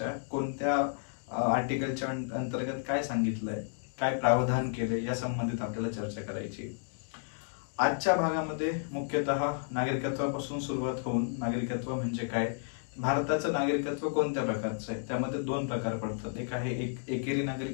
कोणत्या आर्टिकलच्या अंतर्गत काय सांगितलंय, काय प्रावधान केले या संबंधित आपल्याला चर्चा करायची. आजच्या भागामध्ये मुख्यतः नागरिकत्वापासून सुरुवात होऊन नागरिकत्व म्हणजे काय, भारताचं नागरिकत्व कोणत्या प्रकारचं आहे, त्यामध्ये दोन प्रकार पडतात. एक आहे एकेरी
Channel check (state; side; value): silent; right; digital silence